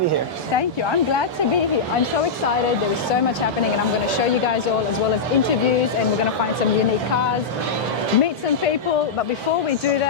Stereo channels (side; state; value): right; quieter; 4.7 dB